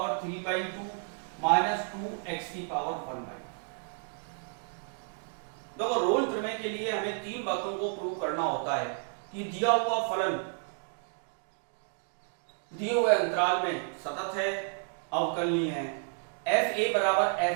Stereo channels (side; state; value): left; silent; 56 dB below the other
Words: 3/2 माइनस 2x की पावर 1/2। देखो रोल प्रमेय के लिए हमें तीन बातों को प्रूव करना होता है कि दिया हुआ फलन दिए हुए अंतराल में सतत है, अवकलनीय है। f a बराबर